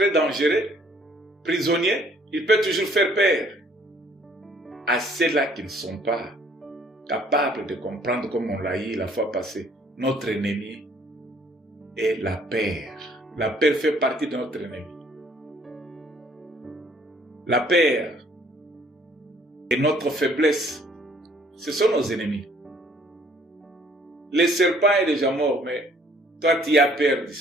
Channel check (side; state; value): both; normal; correlation 0.60